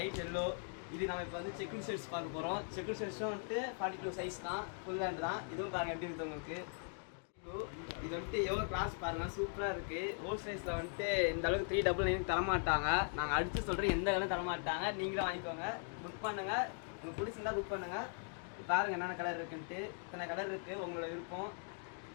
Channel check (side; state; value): right; silent; 51 dB below the other